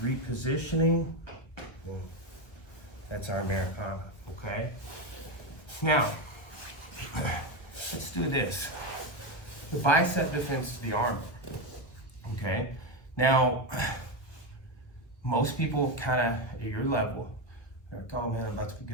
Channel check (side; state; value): right; late; 1.3 ms